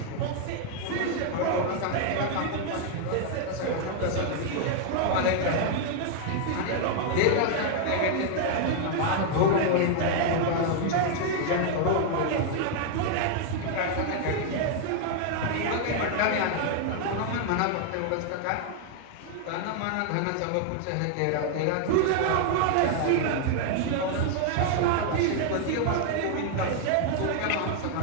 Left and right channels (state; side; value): different; both; correlation 0.00